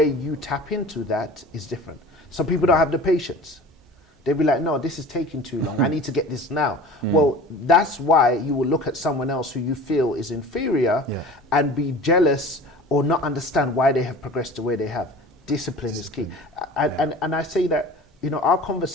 you tap into that is different. Some people don't have the patience. They'll be like, no, this is taking too long. I need to get this now. Well, that's why you will look at someone else who you feel is inferior and be jealous or not understand why they have progressed to where they have. Discipline is key. And I say that, you know, our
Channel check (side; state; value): both; normal; correlation 0.40